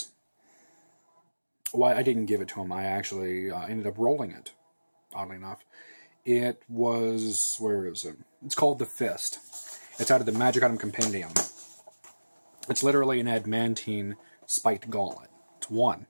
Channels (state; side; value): inverted; both; correlation -1.00